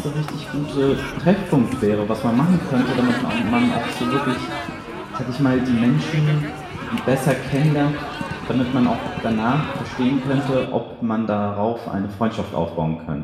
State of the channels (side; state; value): both; identical; correlation 1.00